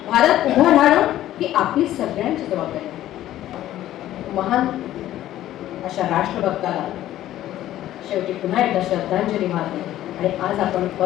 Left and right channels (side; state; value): right; quieter; 13.4 dB